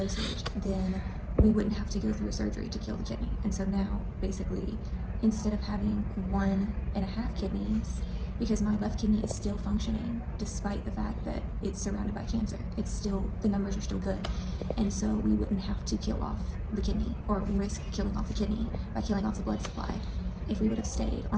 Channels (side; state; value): both; identical; correlation 1.00